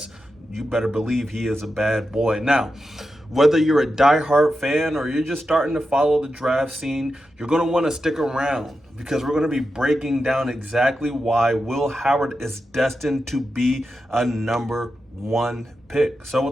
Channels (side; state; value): both; normal; correlation 0.89